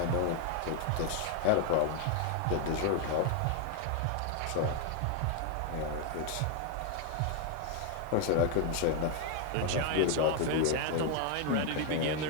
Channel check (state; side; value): different; both; correlation 0.01